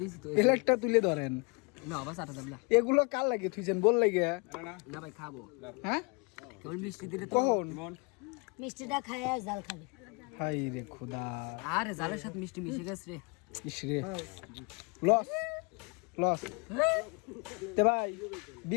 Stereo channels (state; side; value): quieter; right; 32.1 dB